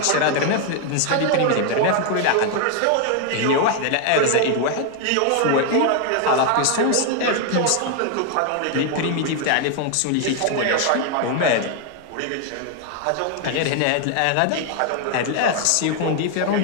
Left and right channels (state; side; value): different; both; correlation 0.01